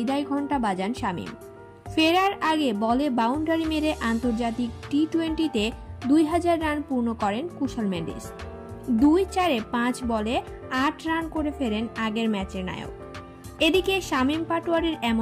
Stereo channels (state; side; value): identical; both; correlation 1.00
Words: ঘণ্টা বাজান শামীম। ফেরার আগে বলে বাউন্ডারি মেরে আন্তর্জাতিক টি-20তে 2000 রান পূর্ণ করেন কুশাল মেন্ডিস। 2-4-এ 5 বলে 8 রান করে ফেরেন আগের ম্যাচের নায়ক। এদিকে শামীম পাটোয়ারির